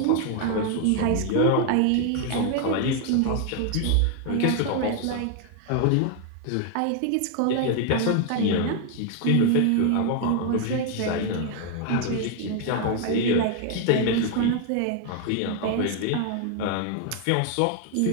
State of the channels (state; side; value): different; both; correlation 0.00